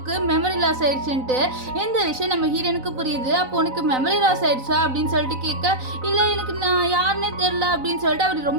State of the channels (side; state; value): left; late; 3.9 ms